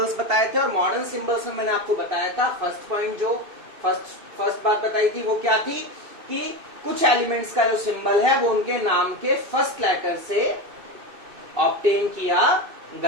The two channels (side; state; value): left; late; 2.6 ms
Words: बताए थे. और मॉडर्न सिंबल्स में मैंने आपको बताया था फर्स्ट पॉइंट, जो फर्स्ट बात बताई थी वो क्या थी कि कुछ एलिमेंट्स का जो सिंबल है वो उनके नाम के फर्स्ट लेटर से ऑब्टेन किया